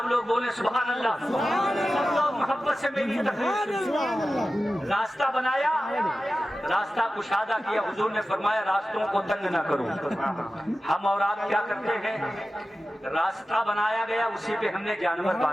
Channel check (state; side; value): normal; both; correlation 0.94